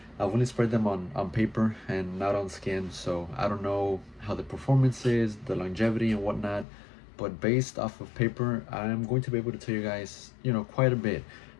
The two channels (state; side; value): drops out; right; at 6.7 s